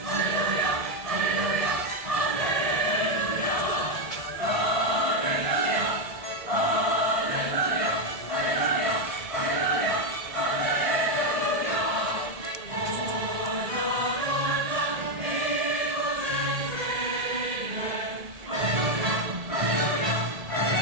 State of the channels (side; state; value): left; late; 1.8 ms